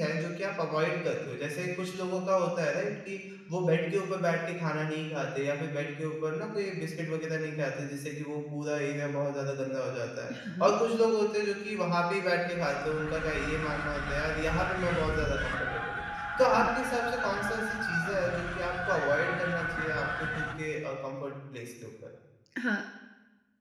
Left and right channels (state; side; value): identical; both; correlation 1.00